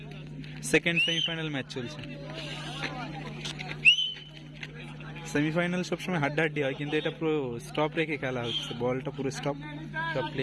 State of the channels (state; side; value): identical; both; correlation 1.00